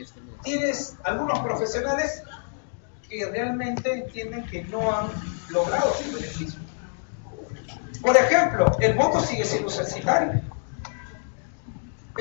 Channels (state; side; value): silent; right; digital silence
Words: tienes algunos profesionales que realmente entienden que no han logrado su beneficio. Por ejemplo, el voto sigue siendo censitario.